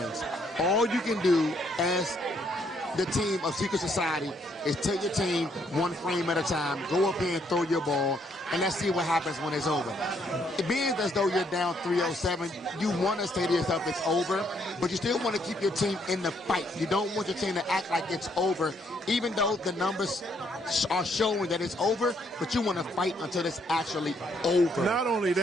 All you can do as the team of Secret Society is take your team one frame at a time, go up here and throw your ball, and let's see what happens when it's over. It being as though you're down 307, you want to say to yourself it's over, but you still want to keep your team in the fight. You don't want your team to act like it's over, even though the numbers are showing that it's over, but you want to fight until it's actually over. Not only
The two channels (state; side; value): normal; both; correlation 0.71